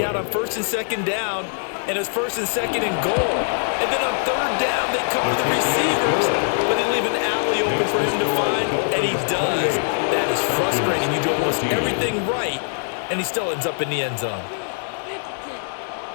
on first and second down, and it's first and second and goal. And then on third down, they cover the receivers, but they leave an alley open for him to find, and he does. That is frustrating. You do almost everything right, and he still ends up in the end zone.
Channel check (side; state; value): right; silent; digital silence